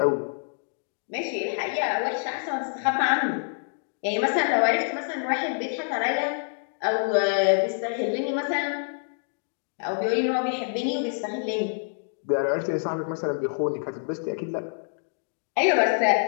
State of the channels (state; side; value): silent; right; digital silence